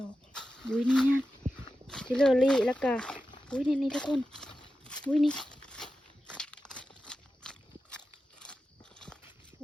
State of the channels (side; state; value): both; normal; correlation 0.92